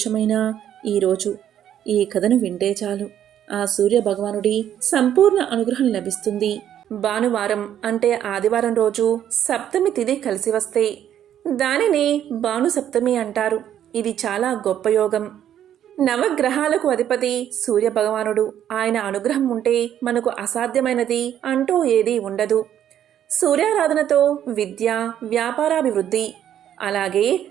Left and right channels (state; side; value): quieter; left; 10.5 dB